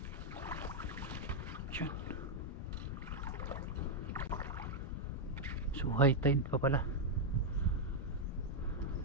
Yun. So high tide pa pala.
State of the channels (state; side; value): normal; both; correlation 0.00